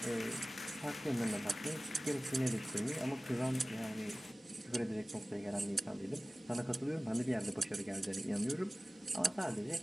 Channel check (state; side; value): normal; both; correlation 0.97